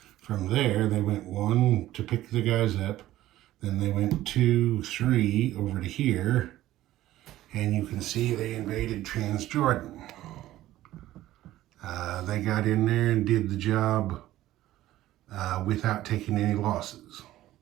from there they went 1 to pick the guys up, then they went 2, 3 over to here, and you can see they invaded Transjordan. They got in there and did the job without taking any losses. So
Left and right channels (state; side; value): quieter; left; 14.8 dB